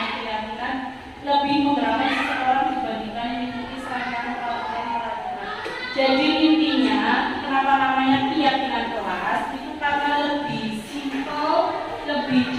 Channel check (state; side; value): identical; both; correlation 1.00